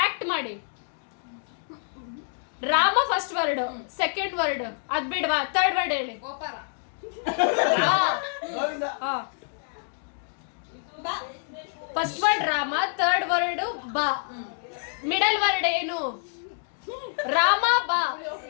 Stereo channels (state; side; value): silent; right; digital silence